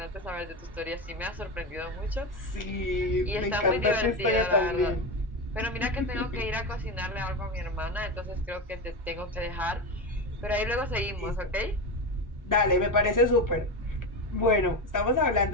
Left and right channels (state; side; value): normal; both; correlation 0.18